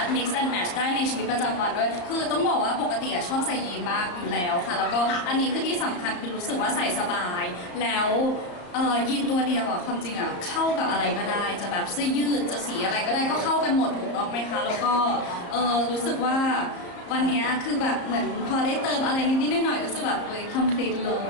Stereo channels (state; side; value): late; right; 34 ms